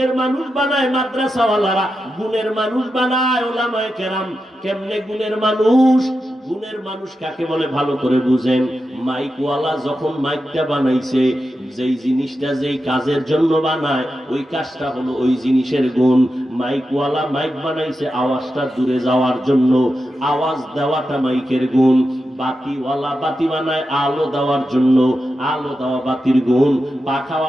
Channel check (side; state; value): both; normal; correlation 0.89